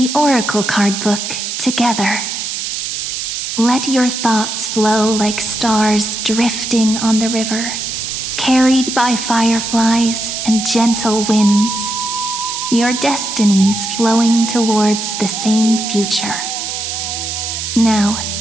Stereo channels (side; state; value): right; noise; hiss, 4 dB below the sound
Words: Oracle card book together. Let your thoughts flow like stars drifting on the river, carried by fireflies and gentle winds. Your destinies flowing towards the same future. Now,